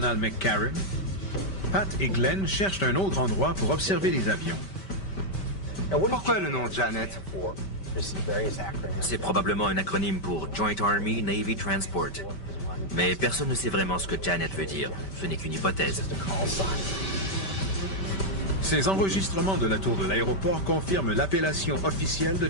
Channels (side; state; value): right; late; 5.2 ms